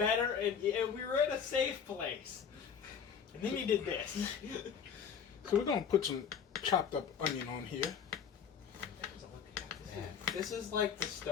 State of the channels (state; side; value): quieter; right; 7.2 dB